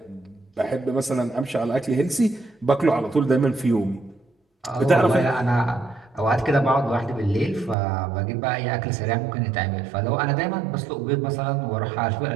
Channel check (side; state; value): left; drops out; at 7.8 s